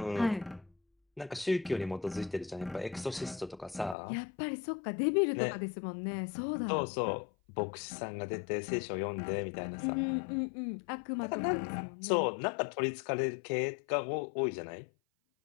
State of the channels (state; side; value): drops out; right; at 4.0 s